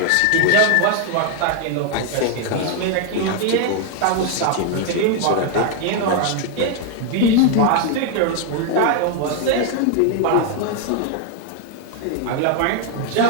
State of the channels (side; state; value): both; different; correlation 0.00